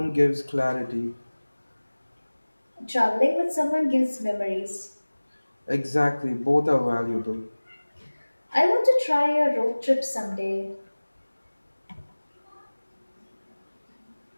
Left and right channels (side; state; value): both; inverted; correlation -1.00